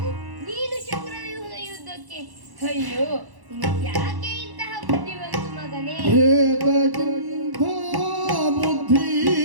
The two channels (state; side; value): late; left; 1.1 ms